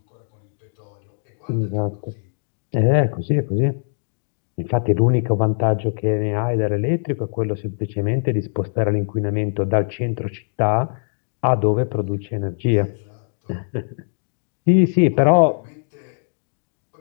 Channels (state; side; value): silent; right; digital silence